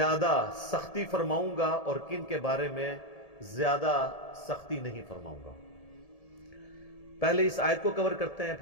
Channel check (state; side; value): late; right; 1.7 ms